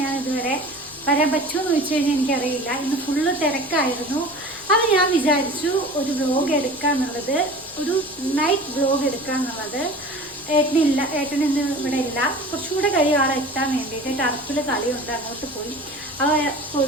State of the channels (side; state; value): left; noise; rumble, 26 dB below the sound